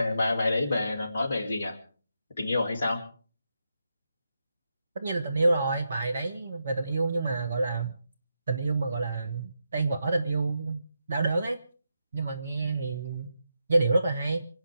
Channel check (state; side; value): inverted; both; correlation -0.85